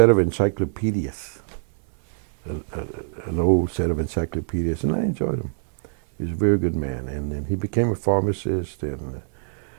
of encyclopedias, an old set of encyclopedias, and I enjoyed him. He was a very good man, and he became a pharmacist and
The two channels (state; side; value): silent; left; 63 dB below the other